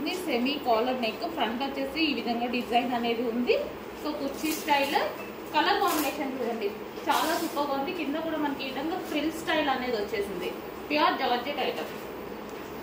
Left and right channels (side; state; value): both; identical; correlation 1.00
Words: సెమీ కాలర్ నెక్, ఫ్రంట్ వచ్చేసి ఈ విధంగా డిజైన్ అనేది ఉంది. సో కుర్చీ స్టైల్, కలర్ కాంబినేషన్ చూడండి చాలా సూపర్గా ఉంది. కింద కూడా మనకి ఈ విధంగా ఫ్రిల్ స్టైల్ అనేది వచ్చేసింది. Pure georgette item.